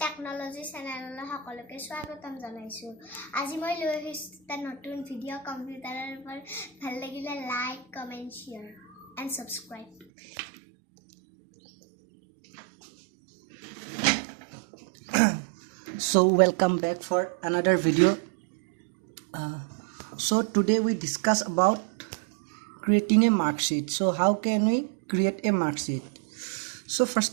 technology চেনেললৈ সকলোকে স্বাগতম জনাইছো। আজি মই লৈ আহিছো এটা নতুন ভিডিঅ' কম্পিউটাৰৰ ওপৰত। ভাল লাগিলে like, comment, share and subscribe. So welcome back for another video. So today we discuss about creating a mark sheet. So how can we create a mark sheet? So first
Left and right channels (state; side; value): drops out; left; at 10.1 s